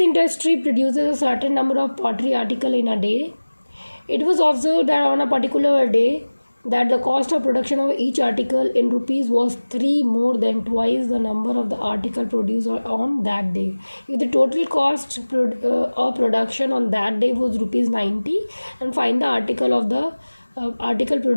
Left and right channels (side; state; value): both; inverted; correlation -1.00